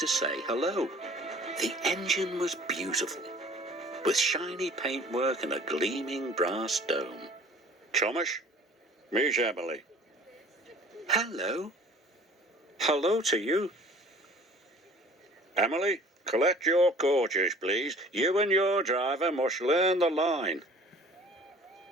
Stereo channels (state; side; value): normal; both; correlation 0.49